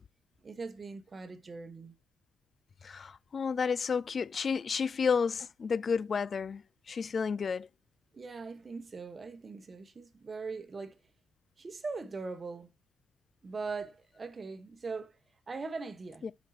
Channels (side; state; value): right; quieter; 3.8 dB